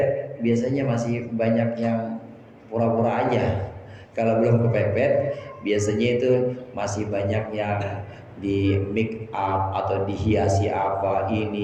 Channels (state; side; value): identical; both; correlation 1.00